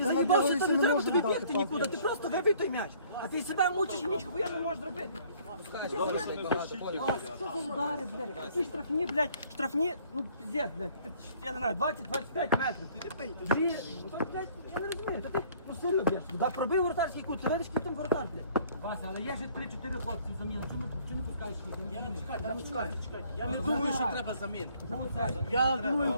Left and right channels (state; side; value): inverted; both; correlation -0.58